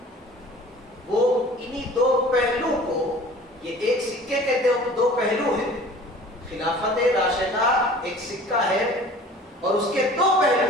वो इन्हीं 2 पहलू को, ये एक सिक्के के 2 पहलू हैं। खिलाफत राशिदा एक सिक्का है और उसके 2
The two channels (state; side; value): normal; both; correlation 0.45